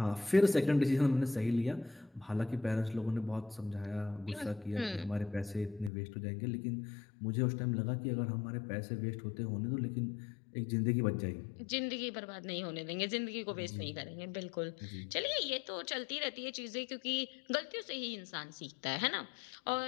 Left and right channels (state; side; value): drops out; right; at 5.9 s